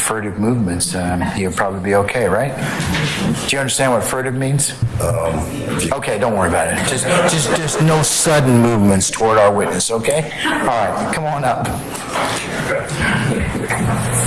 movements, he'll probably be okay, right? Do you understand what furtive means? Okay, don't worry about it. Just no sudden movements toward our witness, okay? All right, come on up.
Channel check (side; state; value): both; identical; correlation 1.00